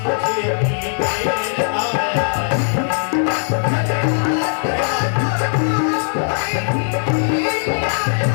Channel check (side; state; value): right; silent; digital silence